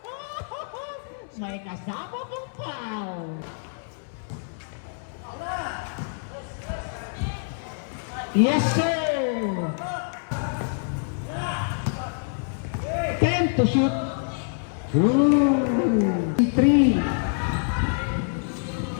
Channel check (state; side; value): silent; right; 61 dB below the other